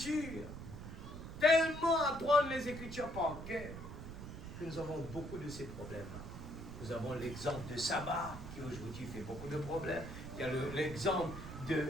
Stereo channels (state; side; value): noise; right; rumble, 10 dB below the sound